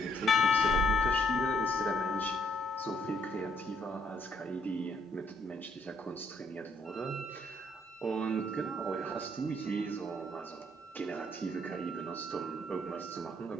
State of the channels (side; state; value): both; normal; correlation 0.69